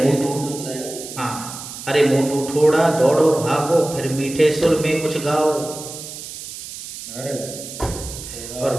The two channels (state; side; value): noise; right; hiss, 11 dB below the sound